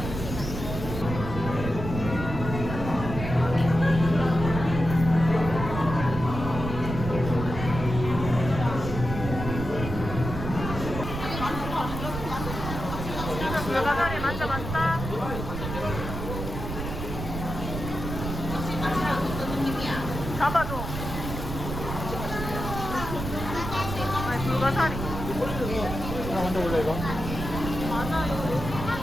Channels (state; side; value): noise; right; rumble, 6 dB below the sound